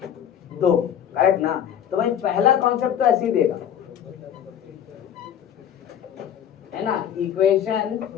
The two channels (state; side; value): quieter; right; 9.6 dB